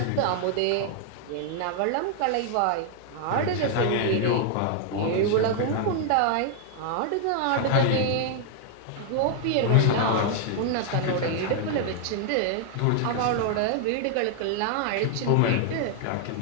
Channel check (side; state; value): both; different; correlation 0.00